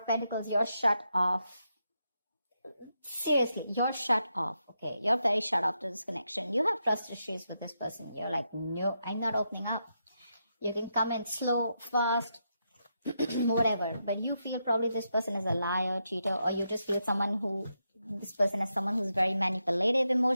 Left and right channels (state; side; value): inverted; both; correlation -0.84